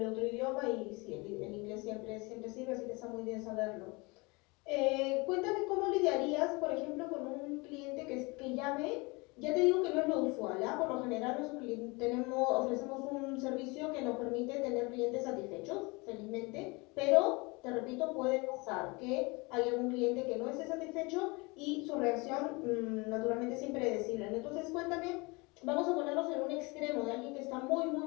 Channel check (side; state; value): right; quieter; 26.6 dB